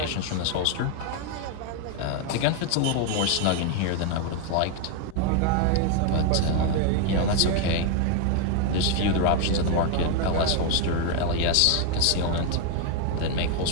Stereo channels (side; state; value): both; different; correlation 0.01